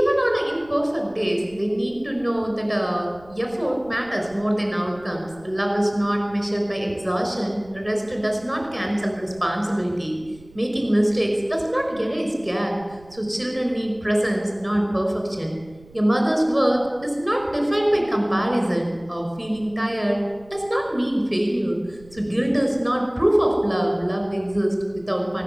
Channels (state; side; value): noise; right; rumble, 24 dB below the sound